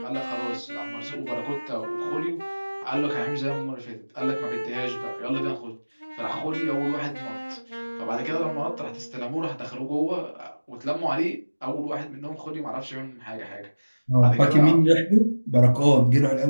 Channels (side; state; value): both; inverted; correlation -1.00